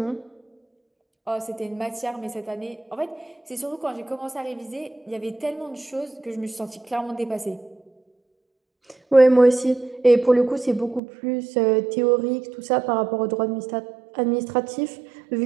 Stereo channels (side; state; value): left; drops out; at 11.0 s